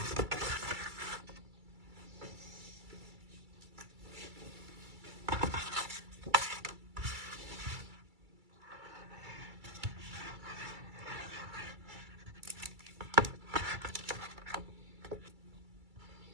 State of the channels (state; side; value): late; left; 2.3 ms